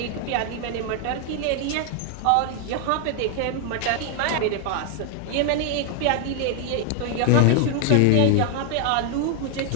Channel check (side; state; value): both; different; correlation 0.00